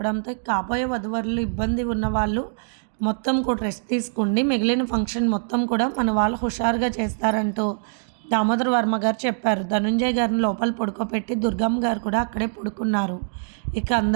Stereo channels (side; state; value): left; silent; digital silence